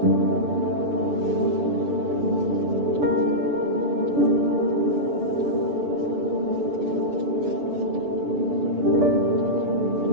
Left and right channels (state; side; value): late; left; 6.9 ms